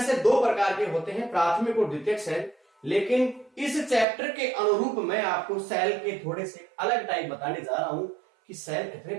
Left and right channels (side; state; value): left; drops out; at 4.0 s